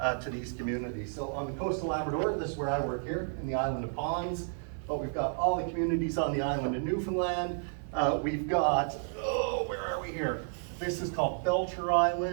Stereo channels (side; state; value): left; silent; digital silence